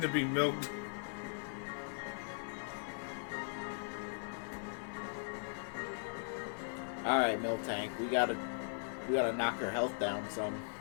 to be milked. Alright, Miltank, we gotta knock her health down some.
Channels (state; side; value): silent; right; digital silence